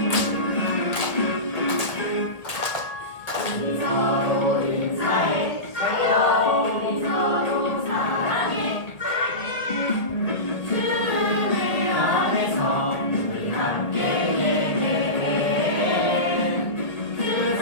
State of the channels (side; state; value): right; late; 1.5 ms